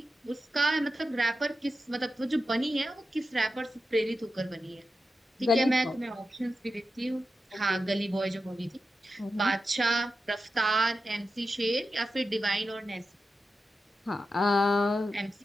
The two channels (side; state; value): both; normal; correlation 0.90